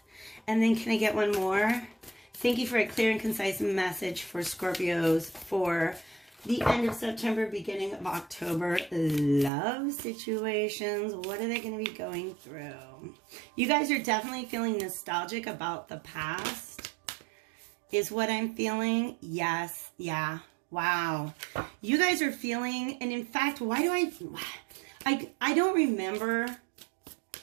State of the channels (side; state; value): left; drops out; at 9.5 s